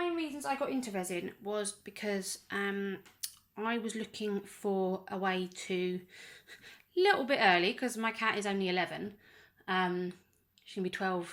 reasons I got into resin was because I was looking for a way to, a little bit early, because my cat is only 11. She's going to be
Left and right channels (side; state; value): both; identical; correlation 1.00